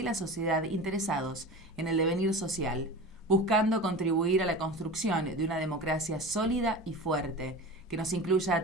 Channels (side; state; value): both; normal; correlation 0.32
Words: la sociedad interesados en el devenir social, buscando contribuir a la construcción de una democracia sólida y fuerte, que nos incluya